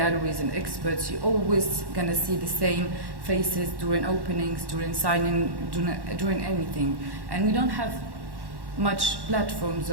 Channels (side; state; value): left; late; 1.1 ms